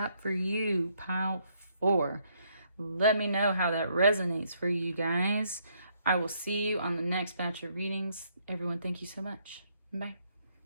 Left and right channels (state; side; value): inverted; both; correlation -0.71